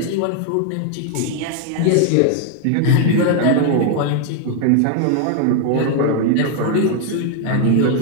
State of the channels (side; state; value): both; different; correlation 0.00